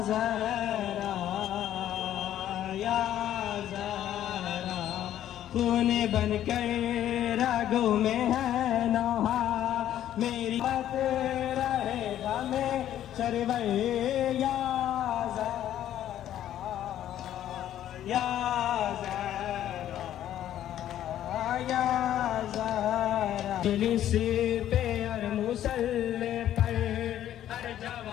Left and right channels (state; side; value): quieter; right; 11.7 dB